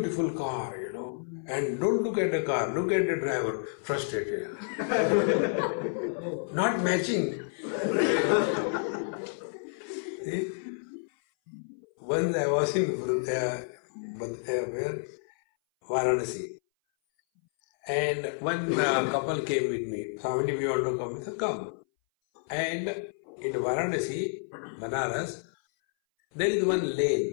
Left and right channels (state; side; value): silent; right; 58 dB below the other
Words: car, and don't look at the car, look at the driver, frustrated. Not matching. See? Once I was in Varanasi, and one couple came with me. Swami, we want to come. I said, come. And in Varanasi, Banaras, there is one